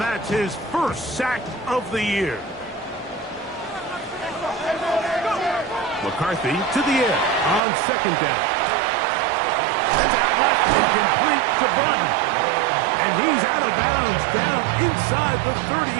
that's his first sack of the year. McCarthy to the air on 2nd down. Sends out left and complete to Burton. And he's out of bounds down inside the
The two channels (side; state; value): left; drops out; at 7.6 s